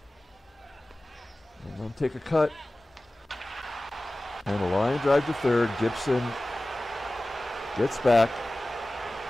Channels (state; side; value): normal; both; correlation 0.97